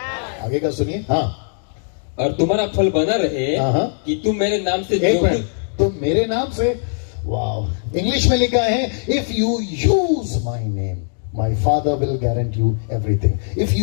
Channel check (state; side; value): silent; right; digital silence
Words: आगे का सुनिए। हाँ, और तुम्हारा फल बना रहे हाँ। कि तुम मेरे नाम से एक जो मिनट, तो मेरे नाम से, वाह। इंग्लिश में लिखा है if you use my name my father will guarantee you everything. If